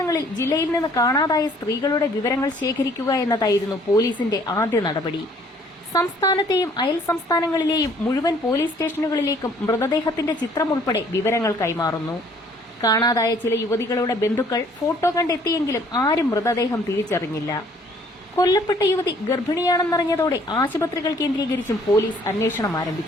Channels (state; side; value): normal; both; correlation 0.59